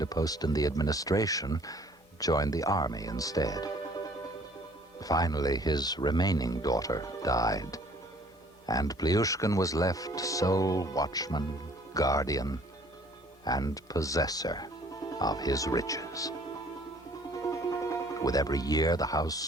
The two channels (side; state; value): both; normal; correlation 0.56